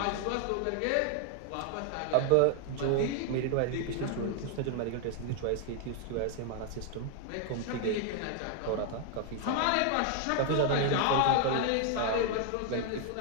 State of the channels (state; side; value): different; both; correlation 0.00